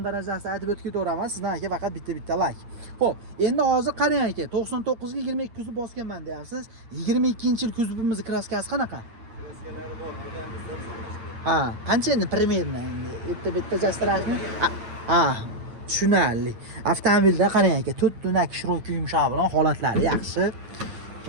darajasida aytib o'tib ketaveramiz. Sizdan aka faqat bitta like. Xo'p, endi hozir qarang aka, 99 ga 22 kuzov bosganman deyapsiz. 22-yil kuzovimiz kraskasi qanaqa? Kraskalari bor, bularmizda. Ha, qancha endi primerno endi bitta jastirashni? Ha, tushunarli. Avtomobilda qarang aka, 4 tunak shroki yumshoq bilan holatlari yaxshi.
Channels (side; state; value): left; late; 8.8 ms